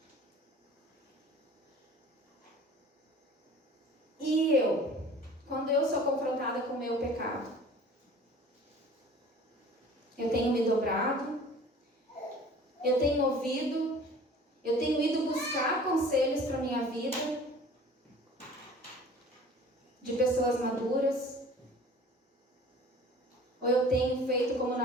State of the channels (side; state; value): both; normal; correlation 0.46